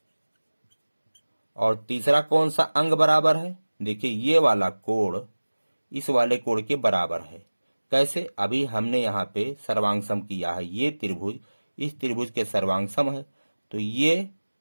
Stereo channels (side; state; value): both; inverted; correlation -1.00